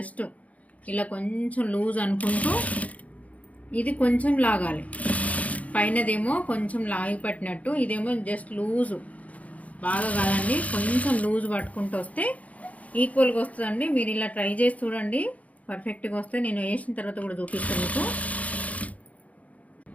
ఇలా కొంచెం లూజ్ అనుకుంటూ ఇది కొంచెం లాగాలి. పైనదేమో కొంచెం లాగి పట్టినట్టు, ఇదేమో జస్ట్ లూజు, బాగా కాదండి, కొంచెం లూజ్ పట్టుకుంటూ వస్తే ఈక్వల్గా వస్తుందండి. మీరు ఇలా ట్రై చేసి చూడండి, పర్ఫెక్ట్గా వస్తే నేను వేసిన తర్వాత కూడా చూపిస్తాను మీకు.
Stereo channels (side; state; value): right; late; 0.069 ms